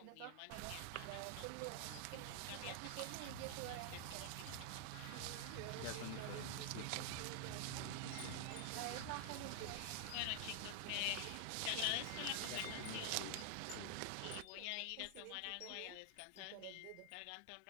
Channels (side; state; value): both; different; correlation 0.00